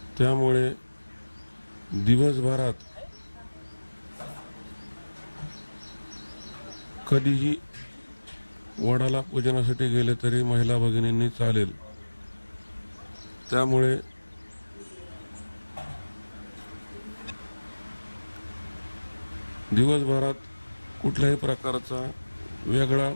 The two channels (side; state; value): both; inverted; correlation -1.00